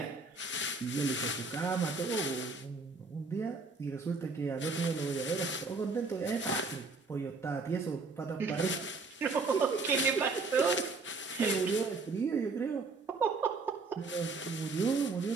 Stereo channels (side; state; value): left; quieter; 4.0 dB